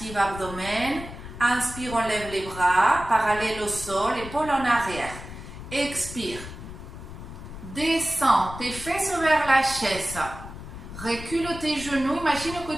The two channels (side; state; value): left; noise; rumble, 12 dB below the sound